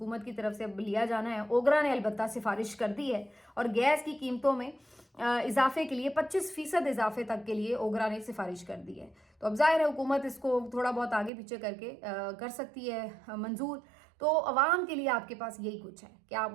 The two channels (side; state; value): left; drops out; at 11.3 s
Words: की तरफ से अब लिया जाना है। ओगरा ने अलबत्ता सिफारिश कर दी है और गैस की कीमतों में इजाफे के लिए 25% इजाफे तक के लिए ओगरा ने सिफारिश कर दी है। तो अब जाहिर है हुकूमत इसको थोड़ा बहुत आगे पीछे करके कर सकती है मंजूर। तो अवाम के लिए आपके पास यही कुछ है कि आप